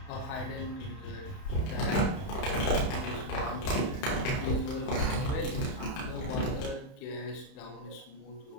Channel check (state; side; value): late; right; 31 ms